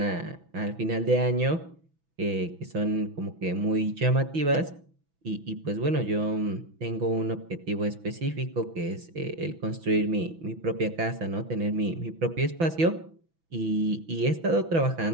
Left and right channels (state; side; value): late; left; 6.1 ms